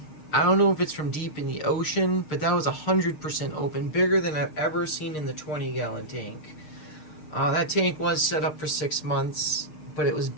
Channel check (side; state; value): right; late; 6.6 ms